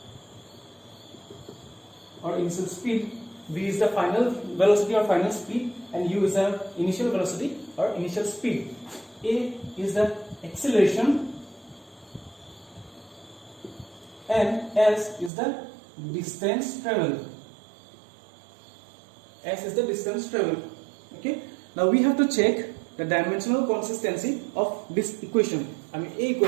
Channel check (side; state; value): left; drops out; at 15.3 s